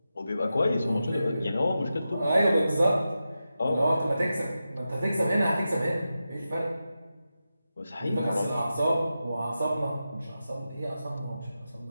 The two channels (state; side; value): inverted; both; correlation -0.91